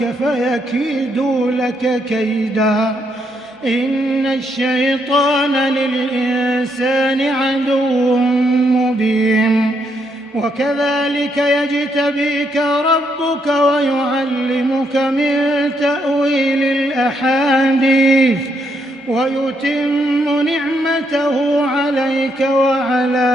فيكيدوا لك كيدا إن الشيطان للإنسان عدو مبين. وكذلك يجتبيك ربك ويعلمك من تأويل الأحاديث ويتم نعمته عليك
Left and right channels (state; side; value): normal; both; correlation 0.76